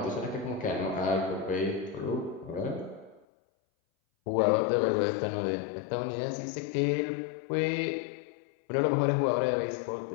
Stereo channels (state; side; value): drops out; right; at 3.2 s